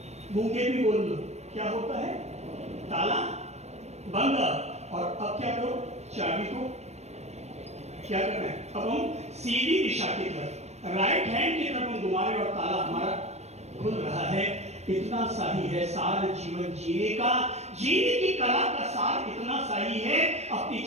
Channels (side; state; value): left; late; 0.32 ms